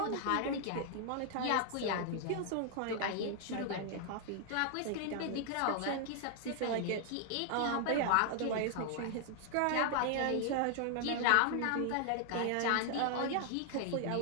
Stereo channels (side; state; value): both; different; correlation 0.00